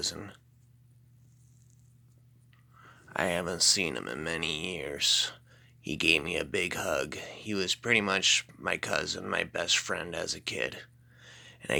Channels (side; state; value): both; identical; correlation 1.00